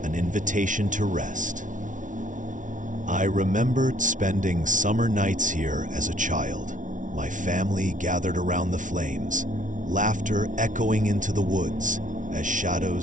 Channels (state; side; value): late; left; 0.37 ms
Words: invitation to rest. I remembered spending summer nights here as a child, my family gathered around the flames, laughter echoing into the woods as